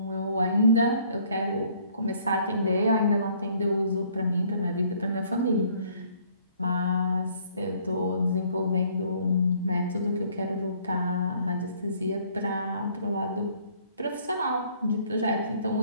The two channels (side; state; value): both; inverted; correlation -0.61